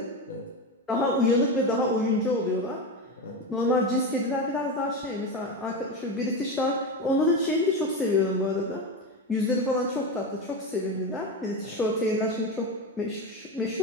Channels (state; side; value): normal; both; correlation 0.18